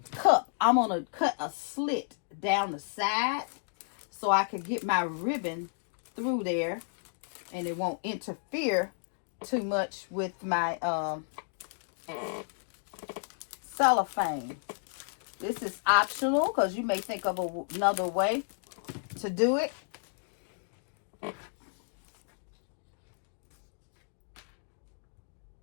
cup, I'm going to cut a slit down the side so I can get my ribbon through there and it won't interfere too much with my cellophane. This is optional because you may think of another way to do it.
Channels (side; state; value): right; silent; digital silence